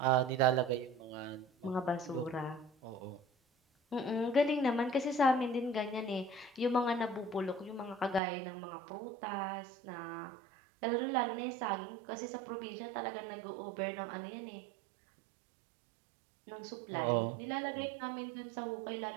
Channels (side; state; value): left; drops out; at 8.2 s